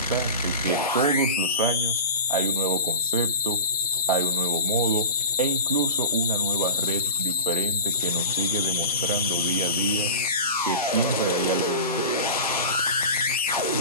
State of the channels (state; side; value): inverted; both; correlation -0.31